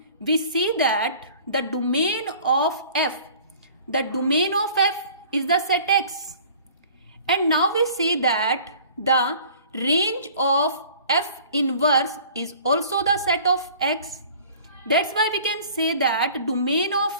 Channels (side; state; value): both; inverted; correlation -0.49